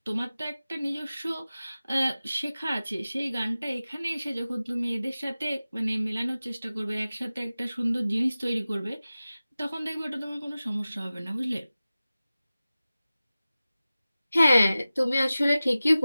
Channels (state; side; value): inverted; both; correlation -0.96